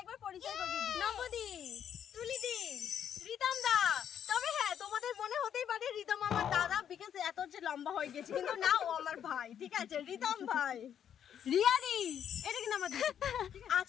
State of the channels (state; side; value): quieter; right; 9.1 dB